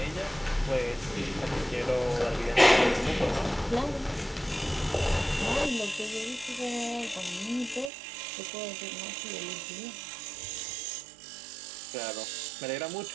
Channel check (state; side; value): drops out; left; at 7.9 s